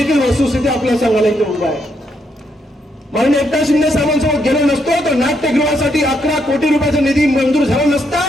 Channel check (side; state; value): both; normal; correlation 0.76